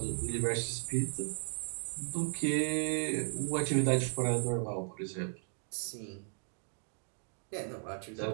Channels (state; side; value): silent; left; 54 dB below the other